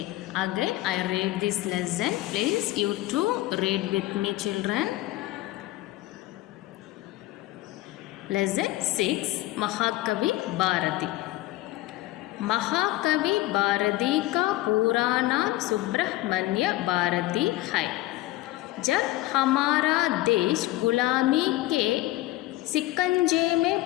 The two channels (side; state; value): right; quieter; 17.1 dB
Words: again I read this lesson. Please you too read with me, children. Lesson 6, महाकवि भारती. महाकवि भारती का पूरा नाम सुब्रह्मण्य भारती है. जब हमारा देश गुलामी के शिकंजे में